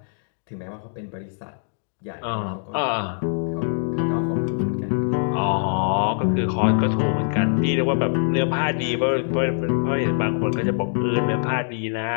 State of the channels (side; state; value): right; silent; digital silence